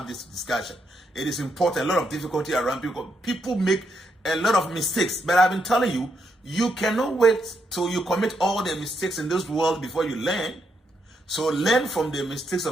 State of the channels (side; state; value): both; normal; correlation 0.79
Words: this discussion. It is important. A lot of difficulty around people. People make a lot of mistakes, but I've been telling you, you cannot wait till you commit all the mistakes in this world before you learn. So learn from the mistakes